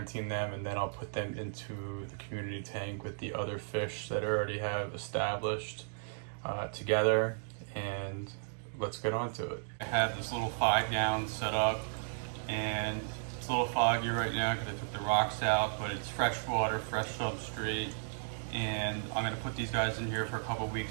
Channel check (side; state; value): left; silent; digital silence